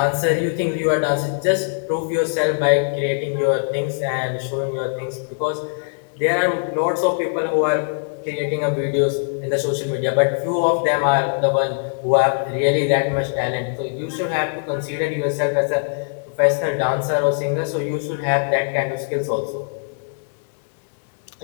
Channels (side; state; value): right; silent; digital silence